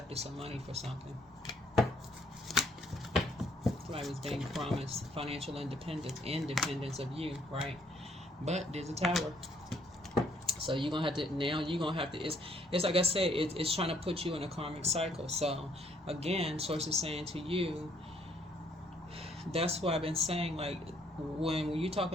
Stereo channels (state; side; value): normal; both; correlation 0.67